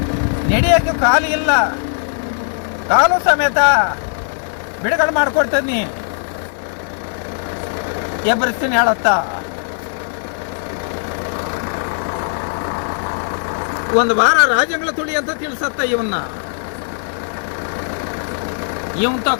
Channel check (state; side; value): silent; right; digital silence